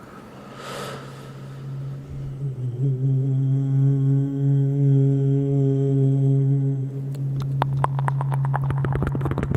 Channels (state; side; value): identical; both; correlation 1.00